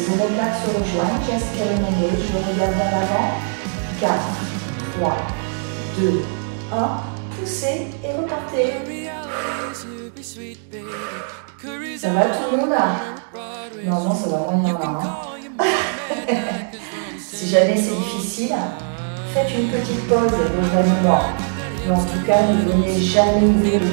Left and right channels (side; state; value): left; silent; digital silence